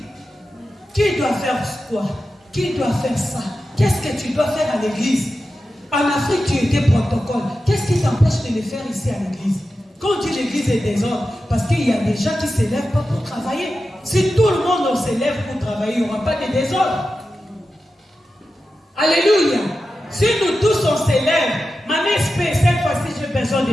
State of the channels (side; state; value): both; normal; correlation 0.92